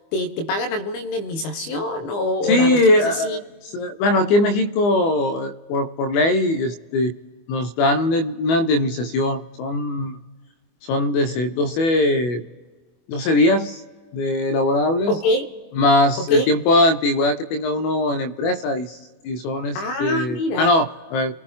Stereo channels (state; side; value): late; right; 24 ms